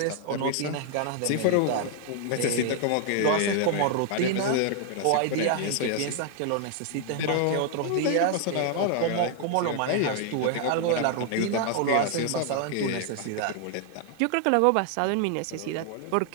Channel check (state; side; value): different; both; correlation 0.00